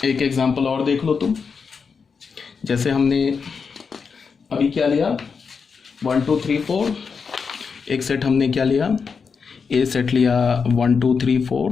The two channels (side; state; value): right; quieter; 5.6 dB